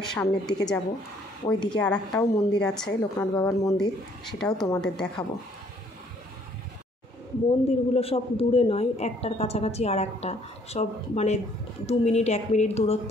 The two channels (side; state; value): both; normal; correlation 0.62